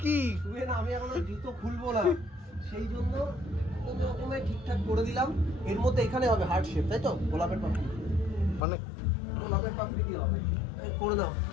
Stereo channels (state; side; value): drops out; right; at 8.6 s